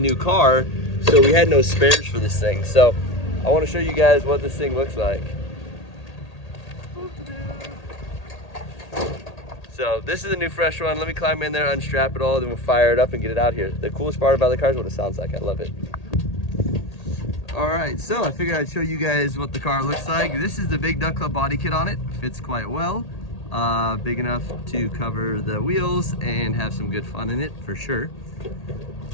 car, so we had no spares for this thing. So I want to show you guys what this thing looks like. So this is a new fresh one. Let me climb in there, unstrap it all, then we'll fire it up and get it out here. The coolest part about the car is what it sounds like. I love it. All right, so I figured I'd show you guys what the car looks like. This is the Big Duck Club body kit on it. Fits quite well. Big enough to cover the wheels and have some good fun in it for sure.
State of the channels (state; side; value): late; right; 1.8 ms